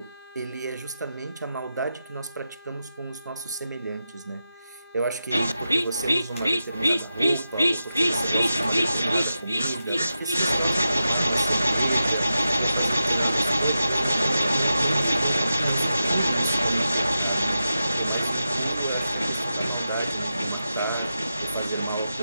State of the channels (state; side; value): inverted; both; correlation -0.90